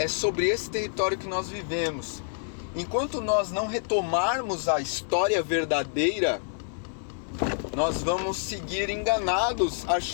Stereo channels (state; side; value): silent; right; 60 dB below the other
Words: sobre esse território que nós vivemos. Enquanto nós não retomarmos a história verdadeira nós vamos seguir enganados,